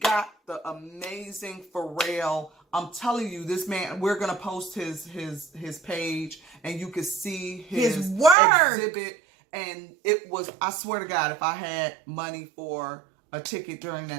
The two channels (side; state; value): left; drops out; at 8.3 s